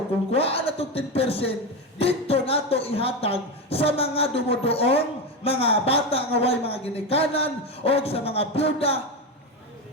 kung kuhaan na itong 10%, dito nato ihatag sa mga dumudoong, mga bata nga way mga ginikanan, o sa mga byuda,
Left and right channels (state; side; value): normal; both; correlation 0.16